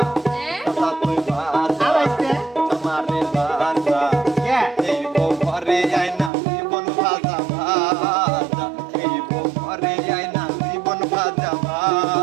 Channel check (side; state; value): left; drops out; at 6.3 s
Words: চাচা তুই বাঁচা, তোমারে বাঁচা। এই বউ ঘরে আয় না জীবন ভাজা ভাজা, এই বউ ঘরে আয় না জীবন ভাজা